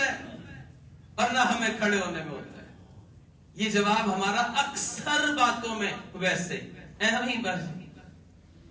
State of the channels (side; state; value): both; identical; correlation 1.00